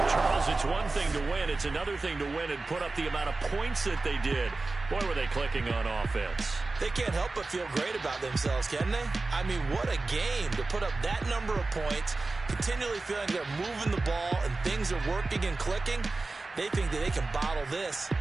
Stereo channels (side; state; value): left; quieter; 3.5 dB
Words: Charles, it's one thing to win. It's another thing to win and put up the amount of points that they did. Boy, were they clicking on offense. They can't help but feel great about themselves, can they? I mean, what a game to put up that number of points, continually feeling they're moving the ball and things are working and clicking. They think that they can bottle this